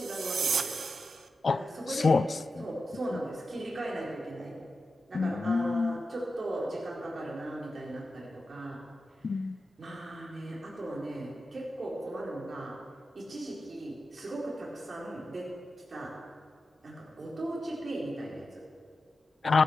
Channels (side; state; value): both; normal; correlation 0.91